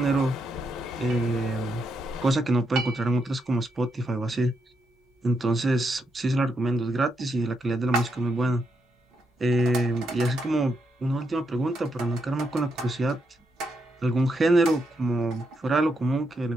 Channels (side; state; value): both; normal; correlation 0.81